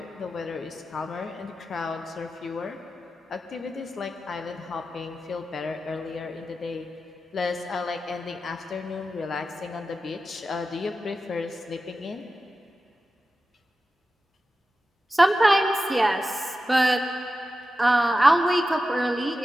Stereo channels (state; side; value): normal; both; correlation 0.92